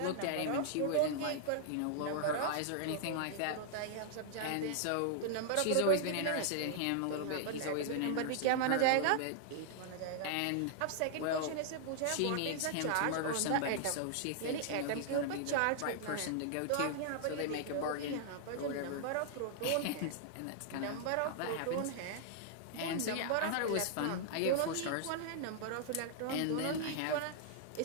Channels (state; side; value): different; both; correlation -0.01